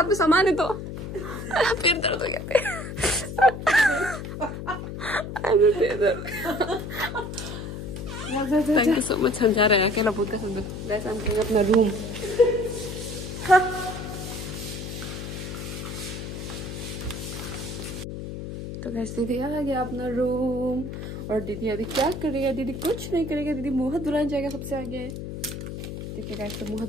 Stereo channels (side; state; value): left; noise; hum, 7 dB below the sound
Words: में सामान है तो फिर दर्द हो गया। Thank you so much. हम जा रहे हैं अकेला भूत का साथ। गाइस हम करेंगे अपना रूम। तो गाइस दीदी आ गया अपना रूम और दीदी अभी क्या करेगा? दीदी कुछ नहीं करेगा, दीदी मुँह दुल्हन जाएगा सबसे आगे। ठीक है गाइस, तो मुँह